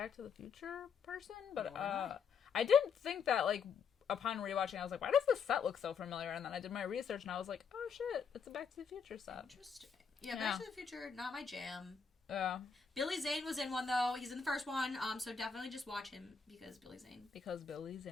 to the Future person, but Nor am I. I didn't think that, like, upon rewatching, I was like, why does this set look so familiar? And then I did my research and I was like, oh shit, it's a Back to the Future set. Interesting. Yeah, Back to the Future, not my jam. Yeah. Billy Zane was in one, though. He's in the first one, so definitely just watch him because Billy Zane. Because Billy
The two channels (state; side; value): quieter; right; 6.1 dB